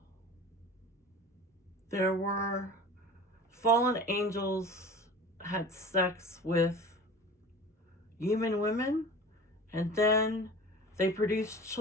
There were fallen angels had sex with human women, and then they produced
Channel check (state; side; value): normal; both; correlation 0.38